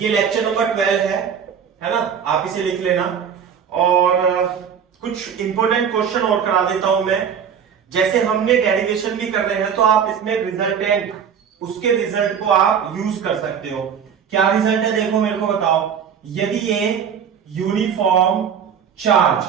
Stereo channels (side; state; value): left; quieter; 7.6 dB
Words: लेक्चर नंबर 12 है ना, आप इसे लिख लेना। और कुछ इंपॉर्टेंट क्वेश्चन और करा देता हूं मैं। जैसे हमने डेरिवेशन भी कर रहे हैं तो आप इसमें रिजल्टेंट, उसके रिजल्ट को आप यूज कर सकते हो। क्या रिजल्ट है देखो, मेरे को बताओ। यदि ये यूनिफॉर्म चार्ज